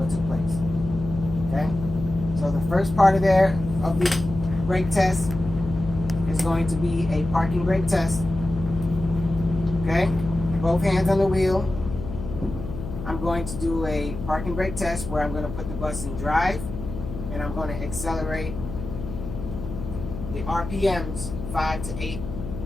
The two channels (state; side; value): noise; left; hum, 8 dB below the sound